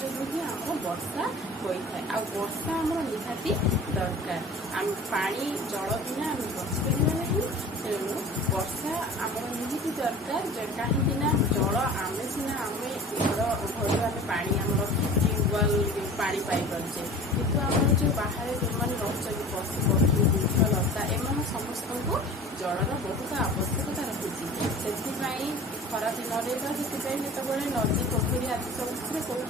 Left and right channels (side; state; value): both; normal; correlation 0.40